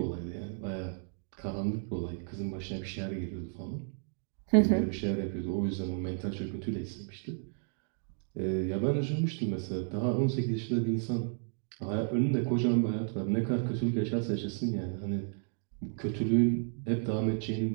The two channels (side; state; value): left; silent; 56 dB below the other